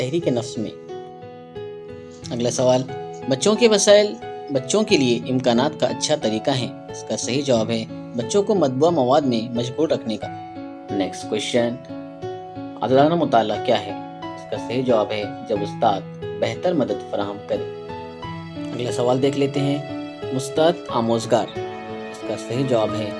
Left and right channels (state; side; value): identical; both; correlation 1.00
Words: नफ्स में। अगला सवाल, बच्चों के वसाइल बच्चों के लिए इम्कानात का अच्छा तरीका है। इसका सही जवाब है बच्चों को मतबूआ मवाद में मशगूल रखने का। नेक्स्ट क्वेश्चन, आज़ादाना मुताला क्या है। इसका सही जवाब है जब उस्ताद बेहतर मदद फराहम करे। अगला सवाल देख लेते हैं, मुस्ताद आमोजगार। इसका सही जवाब है